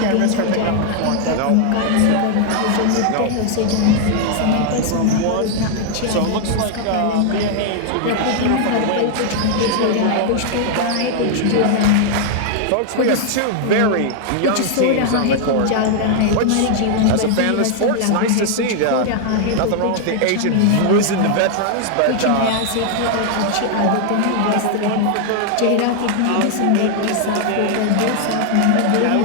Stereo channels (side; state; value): both; different; correlation 0.00